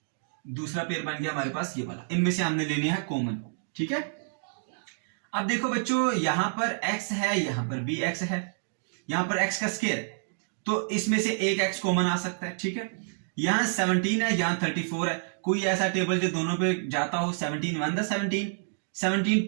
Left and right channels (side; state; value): left; silent; digital silence